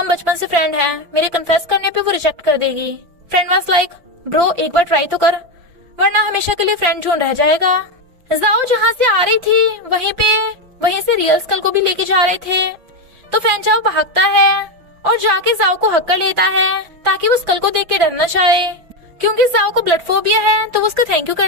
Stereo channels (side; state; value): left; late; 5.9 ms